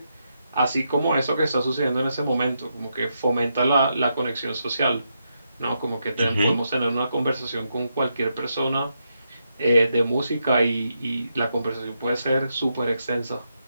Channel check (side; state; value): both; inverted; correlation -0.83